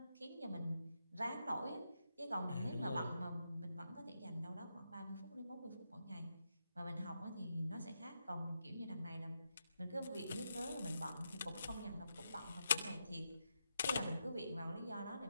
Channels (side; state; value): both; inverted; correlation -0.84